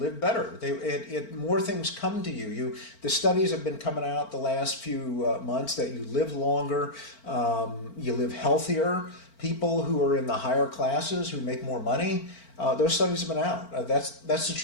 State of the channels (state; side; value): late; right; 4.4 ms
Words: better. More things come to you. The studies have been coming out the last few months that you live longer, you live healthier. People who are in the higher classes who make more money, those studies have been out. That's the